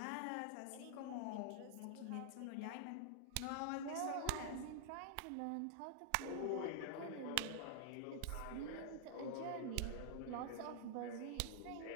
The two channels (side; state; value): both; different; correlation -0.01